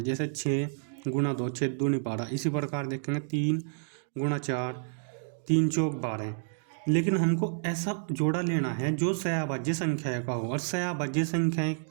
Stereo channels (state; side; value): silent; left; digital silence